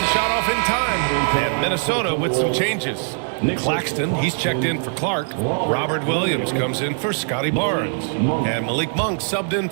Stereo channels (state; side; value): silent; left; 60 dB below the other